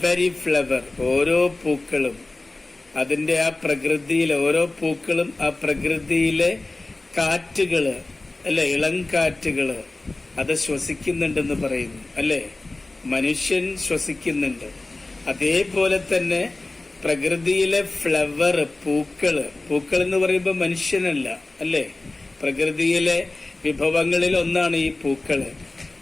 ഫ്ലവർ, ഓരോ പൂക്കളും അതിന്റെ ആ പ്രകൃതിയിലെ ഓരോ പൂക്കളും ആ പ്രകൃതിയിലെ കാറ്റുകള് അല്ലെ, ഇളം കാറ്റുകള് അത് ശ്വസിക്കുന്നുണ്ടെന്ന് പറയുന്നു അല്ലെ? മനുഷ്യൻ ശ്വസിക്കുന്നുണ്ട്. അതേപോലെ തന്നെ പ്രകൃതിയിലെ ഫ്ലവർ, പൂക്കള്, പൂക്കൾ എന്ന് പറയുമ്പോൾ മനുഷ്യനല്ല അല്ലെ? പ്രകൃതിയിലെ വിഭവങ്ങളിൽ ഒന്നാണ് ഈ പൂക്കള്.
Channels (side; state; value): right; quieter; 3.0 dB